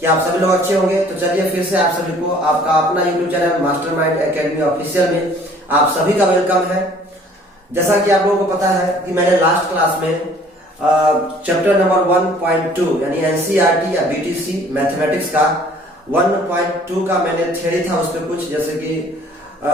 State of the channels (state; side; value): normal; both; correlation 0.54